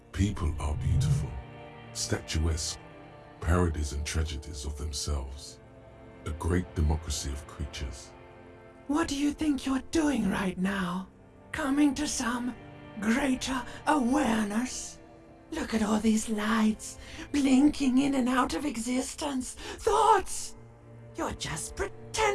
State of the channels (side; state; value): both; identical; correlation 1.00